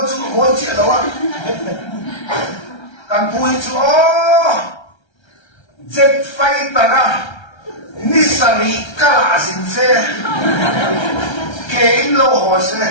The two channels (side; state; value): right; late; 1.3 ms